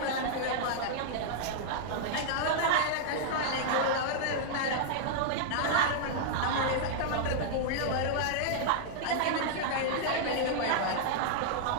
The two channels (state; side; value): different; both; correlation -0.01